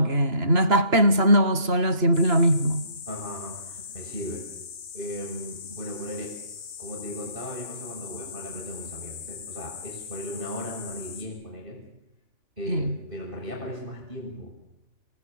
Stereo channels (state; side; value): late; left; 2.9 ms